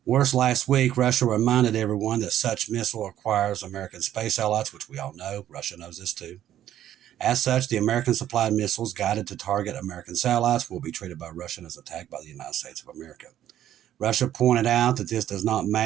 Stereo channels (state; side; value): quieter; left; 11.6 dB